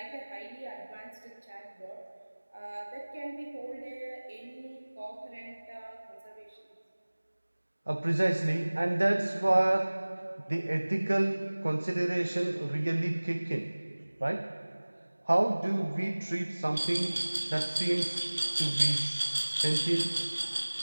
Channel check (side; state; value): both; inverted; correlation -1.00